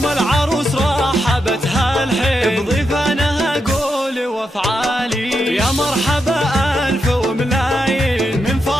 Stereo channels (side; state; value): both; normal; correlation 0.84